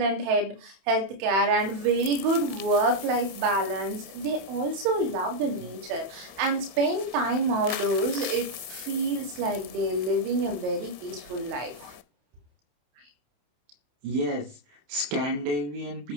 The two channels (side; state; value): left; late; 27 ms